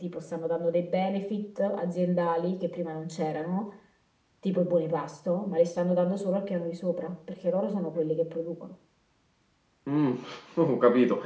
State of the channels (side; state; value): both; identical; correlation 1.00